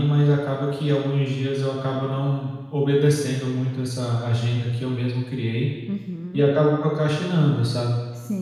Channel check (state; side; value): identical; both; correlation 1.00